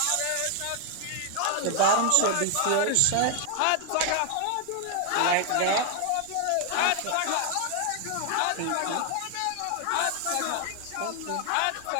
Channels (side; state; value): both; different; correlation 0.00